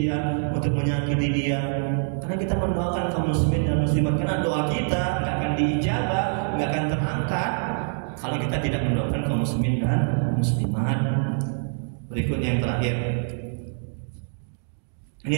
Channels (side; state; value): left; silent; 62 dB below the other